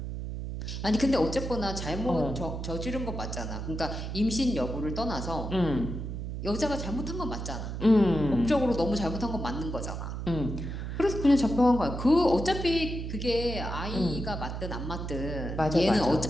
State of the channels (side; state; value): right; noise; hum, 5 dB below the sound